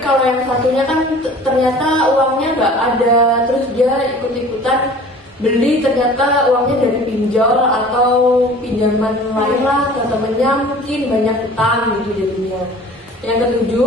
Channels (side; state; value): both; normal; correlation 0.45